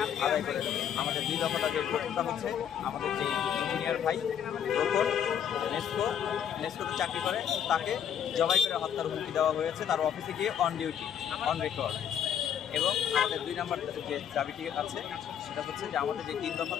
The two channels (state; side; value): quieter; right; 9.0 dB